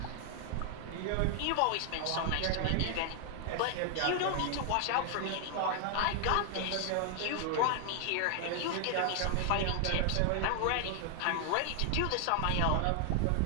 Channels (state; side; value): different; both; correlation 0.00